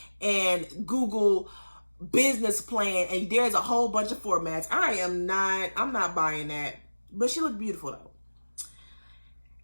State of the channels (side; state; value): both; inverted; correlation -1.00